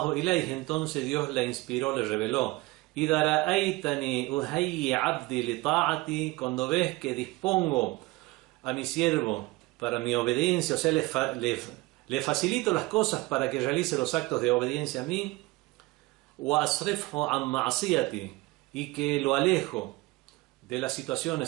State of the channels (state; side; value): quieter; left; 21.6 dB